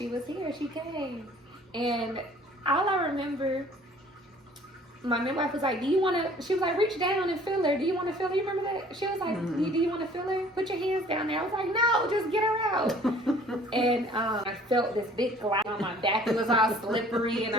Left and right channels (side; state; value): both; normal; correlation 0.53